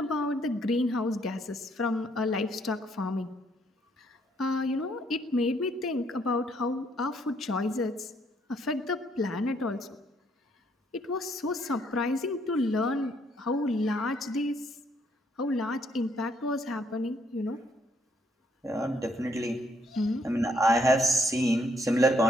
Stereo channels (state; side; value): normal; both; correlation 0.69